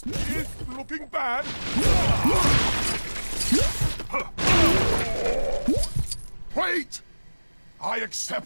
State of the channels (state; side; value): inverted; both; correlation -1.00